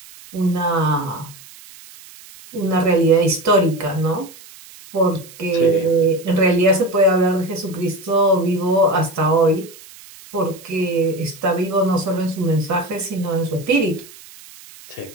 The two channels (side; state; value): right; noise; hiss, 20 dB below the sound